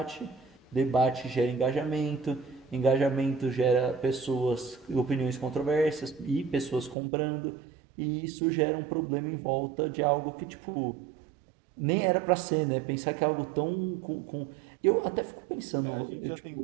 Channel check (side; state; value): left; drops out; at 7.0 s